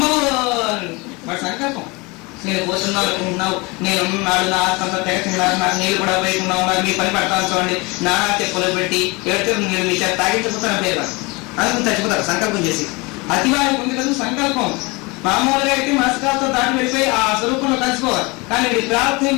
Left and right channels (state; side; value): quieter; right; 26.1 dB